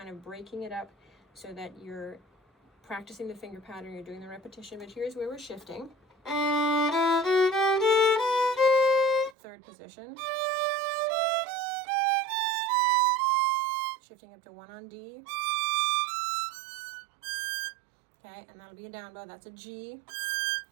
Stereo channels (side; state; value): left; drops out; at 9.3 s